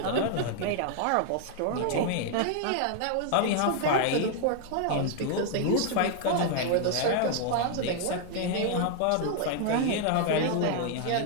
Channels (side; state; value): both; different; correlation 0.00